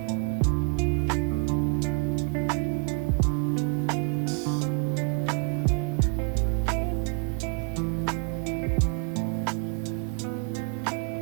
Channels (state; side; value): quieter; left; 29.9 dB